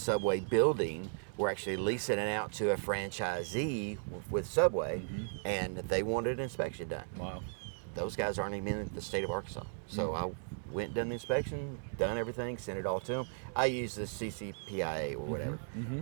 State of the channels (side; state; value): left; silent; digital silence